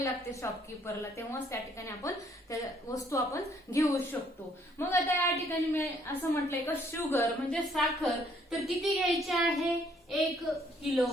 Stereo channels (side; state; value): both; normal; correlation 0.65